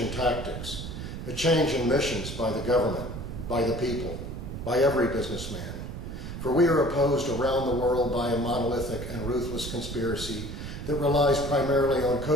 tactics, a change in missions by the government, by the people, by every businessman. For we are opposed around the world by a monolithic and ruthless conspiracy that relies primarily on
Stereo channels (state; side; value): noise; right; rumble, 8 dB below the sound